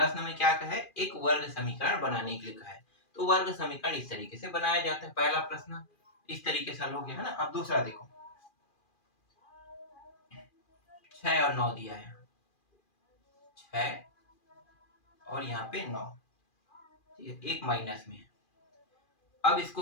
में क्या कहा है, एक वर्ग समीकरण बनाने के लिए कहा है। तो वर्ग समीकरण इस तरीके से बनाया जाता है। पहला प्रश्न इस तरीके से हल हो गया है ना। अब दूसरा देखो, 6 और 9 दिया है, 6 और यहाँ पे 9, ठीक है, एक माइनस में है। अब इसको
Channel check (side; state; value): right; late; 2.4 ms